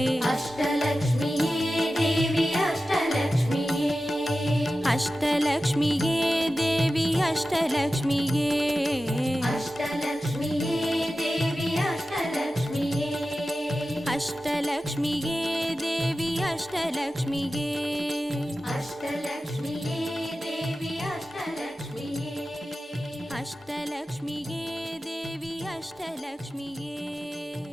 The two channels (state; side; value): normal; both; correlation 0.94